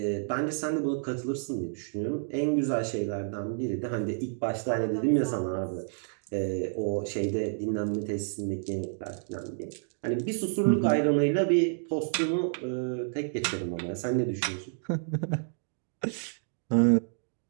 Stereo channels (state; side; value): silent; left; digital silence